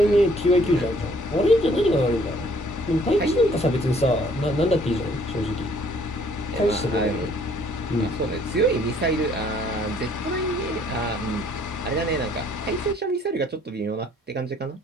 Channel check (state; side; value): normal; both; correlation 0.61